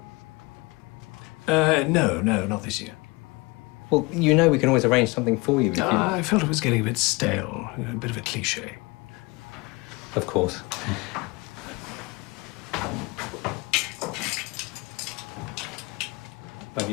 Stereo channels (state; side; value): quieter; right; 25.8 dB